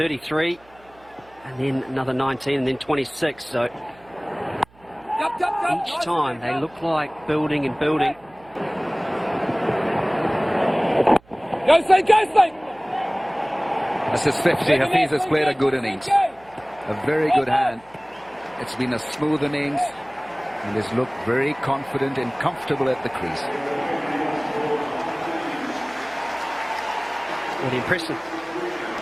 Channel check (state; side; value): noise; right; hum, 28 dB below the sound